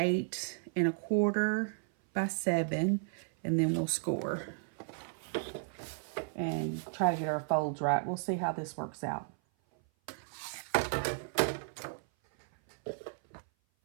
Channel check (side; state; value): left; silent; 55 dB below the other